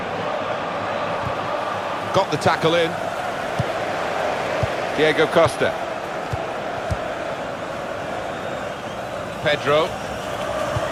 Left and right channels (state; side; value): identical; both; correlation 1.00